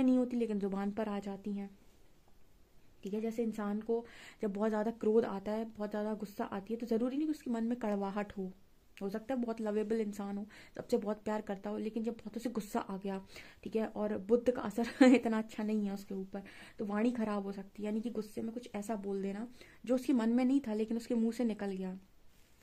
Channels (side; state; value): both; identical; correlation 1.00